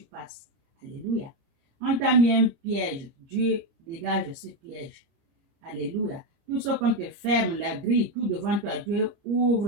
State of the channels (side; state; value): left; late; 30 ms